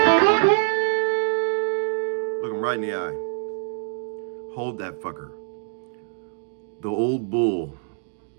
them right in the eye. Hold that fucker. The old bull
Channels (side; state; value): left; silent; 62 dB below the other